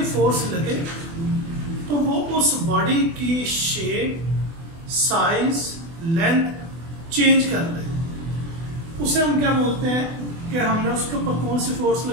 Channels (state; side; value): late; left; 24 ms